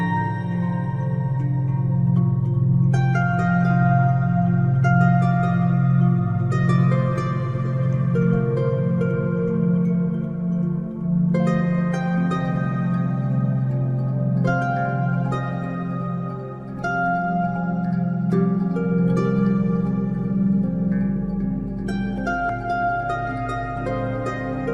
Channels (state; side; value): identical; both; correlation 1.00